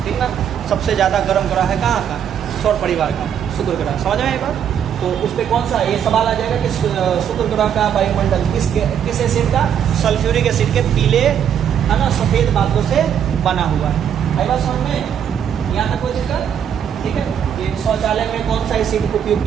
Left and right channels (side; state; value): left; quieter; 8.7 dB